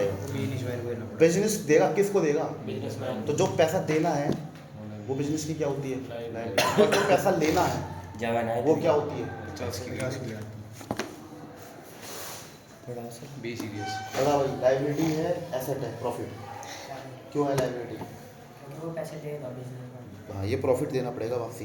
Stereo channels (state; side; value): identical; both; correlation 1.00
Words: बिजनेस देगा, किसको देगा? तो जो पैसा देना है वो बिजनेस की क्या होती है? लायबिलिटी। और जो पैसा लेना है वो क्या होती है? बड़ा भाई, लायबिलिटी है, एसेट है, प्रॉफिट। क्यों है लायबिलिटी? वो पैसे देगा बिजनेस। हाँ, ये प्रॉफिट देना पड़ेगा वापसी।